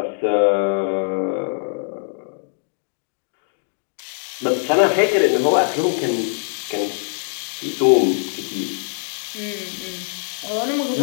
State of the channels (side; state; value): right; silent; 64 dB below the other